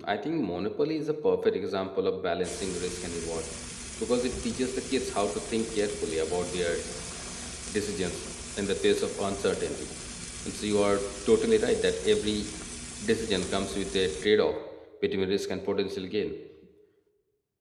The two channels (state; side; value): identical; both; correlation 1.00